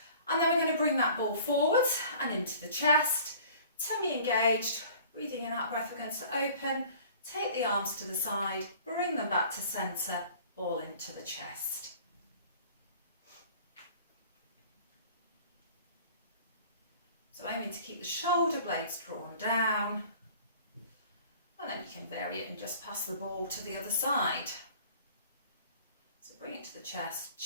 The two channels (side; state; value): both; inverted; correlation -0.48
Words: And then we're going to bring that ball forward and into the chest, tummy engaged, breathing in, out breath, we're going to open, take the arms to the side, bring them back to centre, ball into the chest. So aiming to keep the shoulder blades drawn down, and then you can vary it and just pass the ball to the other side. So bring it to the chest,